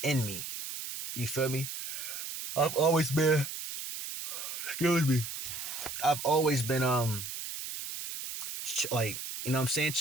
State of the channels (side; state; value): right; noise; hiss, 7 dB below the sound